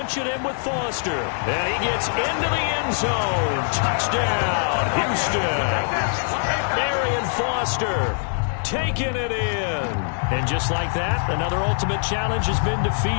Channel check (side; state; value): right; silent; digital silence